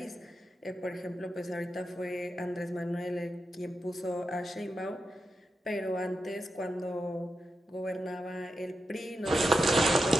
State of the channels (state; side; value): normal; both; correlation 0.88